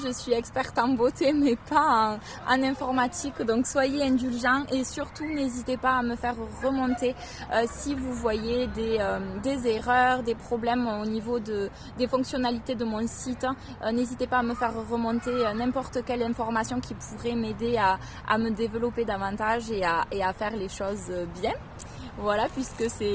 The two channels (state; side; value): identical; both; correlation 1.00